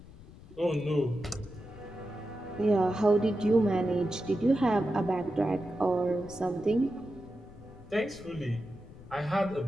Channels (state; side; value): noise; left; rumble, 19 dB below the sound